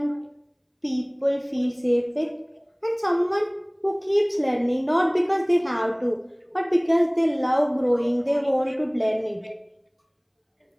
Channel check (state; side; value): identical; both; correlation 1.00